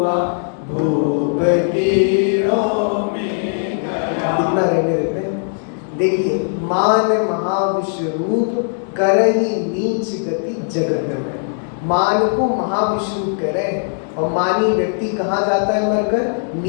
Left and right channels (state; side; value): silent; right; digital silence